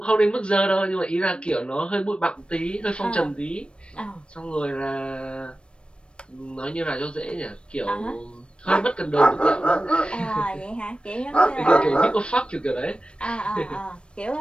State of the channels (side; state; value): right; late; 0.057 ms